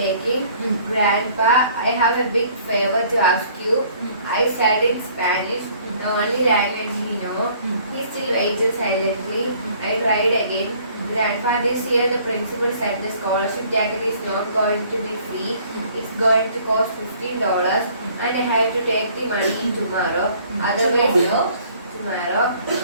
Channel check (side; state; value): both; inverted; correlation -0.57